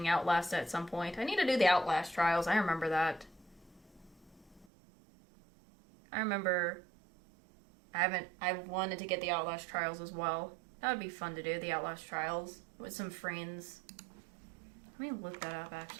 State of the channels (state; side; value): drops out; left; at 4.7 s